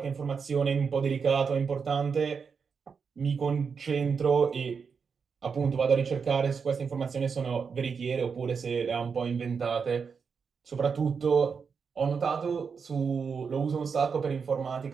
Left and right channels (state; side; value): quieter; left; 5.8 dB